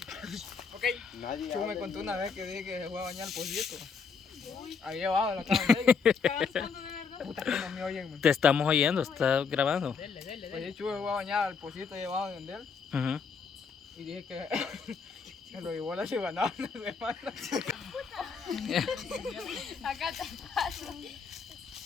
Ok. Chu me contó una vez que dije que se fue a bañar el pollito. Ahí abajo de la cama de ellos. Puta que no me oyen, man. Te estamos oyendo, está grabando. Oye, Chu se fue a bañar al pollito ahí abajo de él. Ujú. Y dije que se lo llevó la cibanada una semana. Acá te paso.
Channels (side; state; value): right; quieter; 5.6 dB